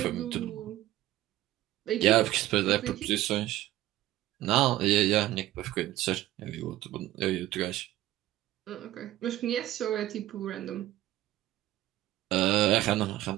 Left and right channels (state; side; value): quieter; left; 15.0 dB